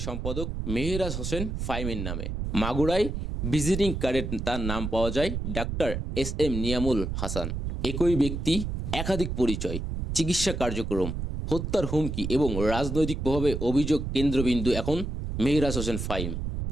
সম্পাদক মেহরাজ হোসেন ফাহিমের নামে। মাগুরায় ভিজিটিং কার্ডে তার নাম পাওয়া যায় ডাক্তার এস.এম. নিয়ামুল হাসান। একই ব্যক্তি, একাধিক পরিচয়, চিকিৎসা কার্যক্রম, হত্যার হুমকি এবং রাজনৈতিক প্রভাবে অভিযোগ কেন্দ্রবিন্দু এখন মেহরাজ হোসেন ফাহিম।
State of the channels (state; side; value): noise; right; rumble, 4 dB below the sound